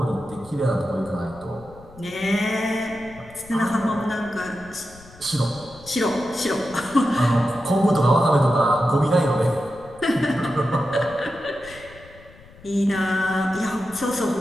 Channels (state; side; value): noise; left; rumble, 22 dB below the sound